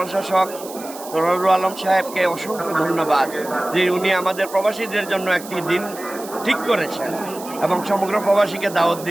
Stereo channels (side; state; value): right; noise; hiss, 15 dB below the sound